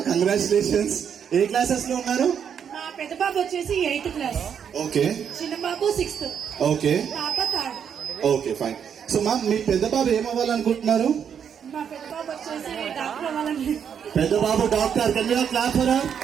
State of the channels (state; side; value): quieter; left; 7.9 dB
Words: కంగ్రాచులేషన్స్. ఏ క్లాసెస్ లో ఉన్నారు? మా పెద్ద బాబు వచ్చేసి 8th క్లాస్, ఓకే చిన్న బాబు 6th, ఓకే పాప 3rd. Okay fine. So ma'am మీ పెద్ద బాబు ఏమవ్వాలనుకుంటున్నారు? మా పెద్ద బాబు వచ్చేసి డాక్టర్ అవ్వాలని. పెద్ద బాబు డాక్టర్. క్లాస్